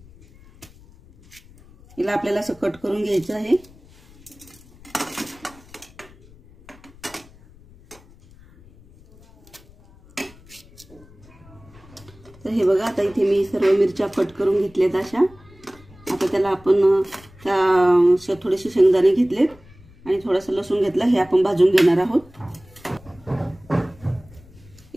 हिला आपल्याला असं कट करून घ्यायचं आहे। तर हे बघा, आता इथे मी सर्व मिरच्या कट करून घेतल्यात अशा। आता त्याला आपण थोडेसे शेंगदाणे घेतलेत आणि थोडासा लसूण घेतला, हे आपण भाजून घेणार आहोत।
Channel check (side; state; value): left; noise; rumble, 24 dB below the sound